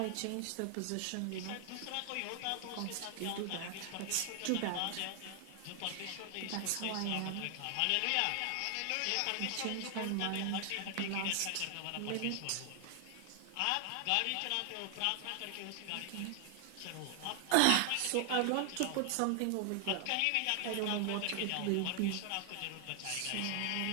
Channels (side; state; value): both; different; correlation 0.00